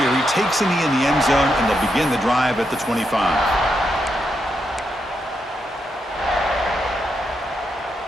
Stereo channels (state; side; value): normal; both; correlation 0.82